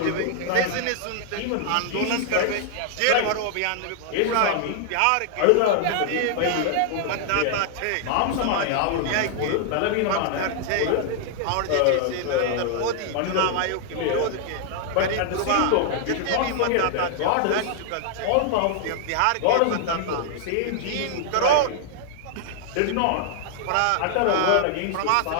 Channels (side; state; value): both; different; correlation 0.00